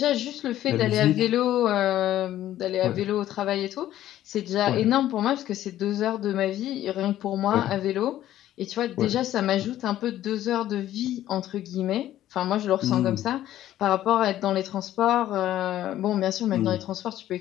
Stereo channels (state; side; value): quieter; right; 13.0 dB